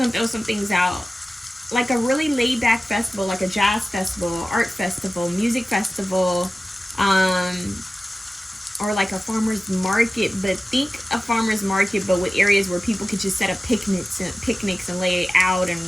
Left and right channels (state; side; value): normal; both; correlation 0.96